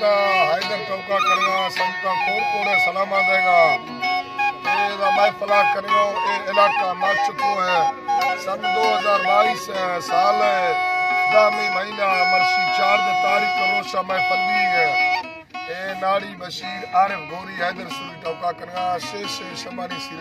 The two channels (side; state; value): both; identical; correlation 1.00